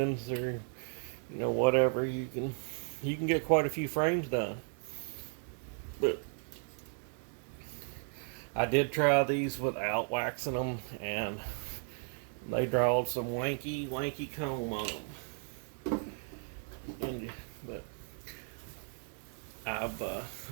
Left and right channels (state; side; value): silent; left; 54 dB below the other